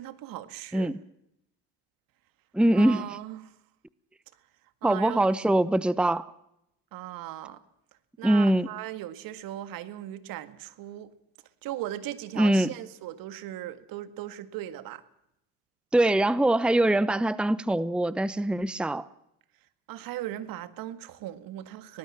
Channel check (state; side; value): normal; both; correlation 0.91